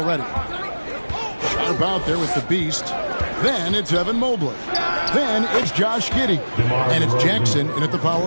Sharp out there with the beast. Then it's Evan Mobley. Then it's Josh Giddey. And it's Jackson in at the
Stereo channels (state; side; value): inverted; both; correlation -1.00